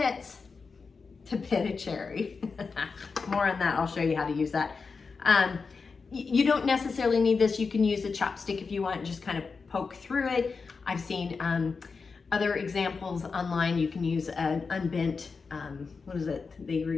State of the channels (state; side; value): quieter; right; 4.8 dB